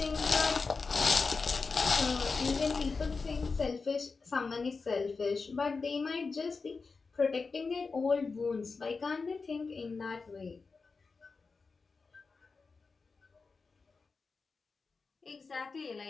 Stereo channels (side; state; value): right; quieter; 4.5 dB